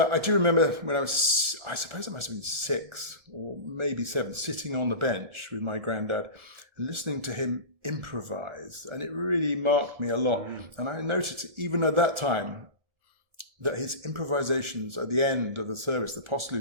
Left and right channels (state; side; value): late; left; 1.4 ms